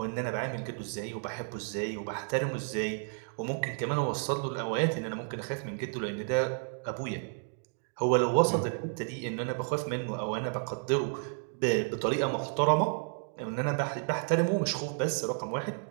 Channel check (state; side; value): silent; left; 57 dB below the other